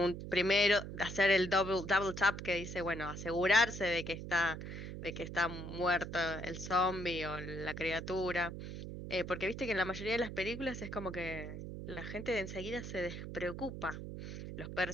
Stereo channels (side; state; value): right; noise; hum, 8 dB below the sound